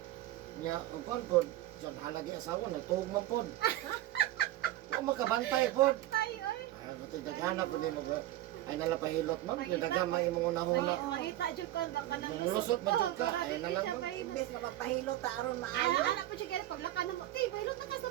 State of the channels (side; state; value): left; quieter; 14.9 dB